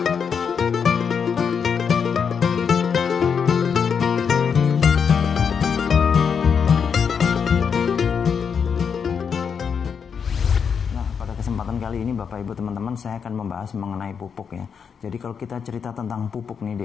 Kesempatan kali ini Bapak Ibu teman-teman saya akan membahas mengenai pupuk ya. Jadi kalau kita cerita tentang pupuk nih di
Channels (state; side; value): quieter; right; 6.6 dB